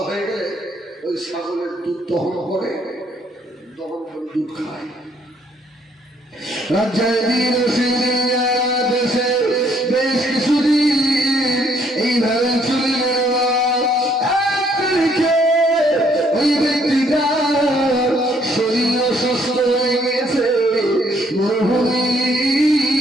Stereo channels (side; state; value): both; normal; correlation 0.67